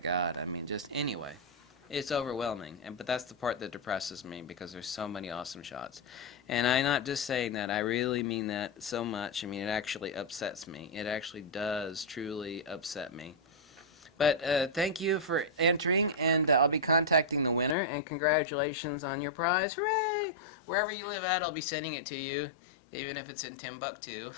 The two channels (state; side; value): drops out; right; at 17.8 s